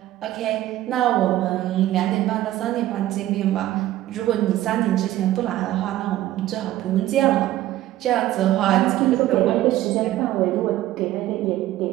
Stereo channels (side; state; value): left; quieter; 14.5 dB